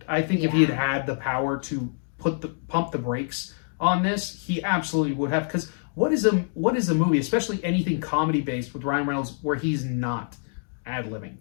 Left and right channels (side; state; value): right; silent; 59 dB below the other